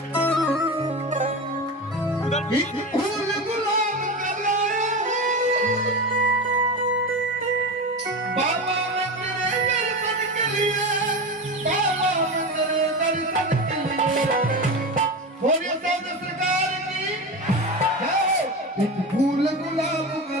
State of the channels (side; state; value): both; normal; correlation 0.23